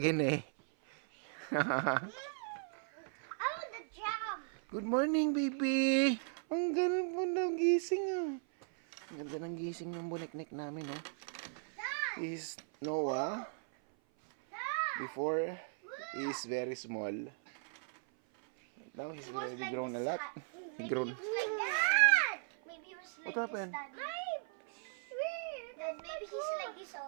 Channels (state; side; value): silent; left; 53 dB below the other